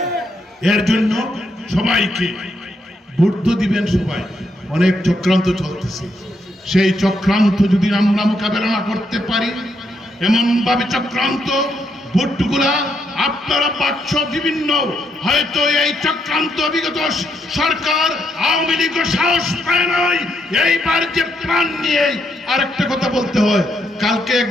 এর জন্য সবাইকে ভোট দিবেন। সবাই অনেক চক্রান্ত চলতেছে, সেই চক্রান্ত যদি আমরা মোকাবেলা না করতে পারি, এমন ভাবে চক্রান্ত ভোটগুলা আপনারা পাচ্ছ বিভিন্ন, হয়তো এই চক্রান্ত বিগত সরকার আওয়ামী লীগ সাহস পায় নাই। এইবার যে প্ল্যান নিয়ে আরেকটা কথা বলতে হয়, কালকে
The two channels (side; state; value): both; normal; correlation 0.78